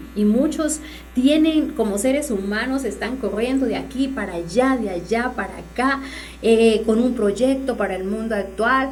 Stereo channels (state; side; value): identical; both; correlation 1.00